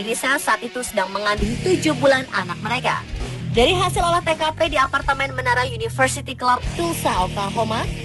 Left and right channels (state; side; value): identical; both; correlation 1.00